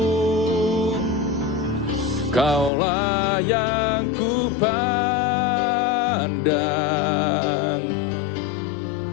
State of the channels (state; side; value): drops out; right; at 2.7 s